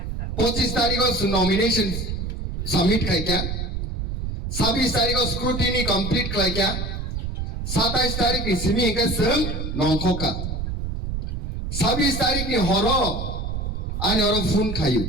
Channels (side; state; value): right; noise; rumble, 4 dB below the sound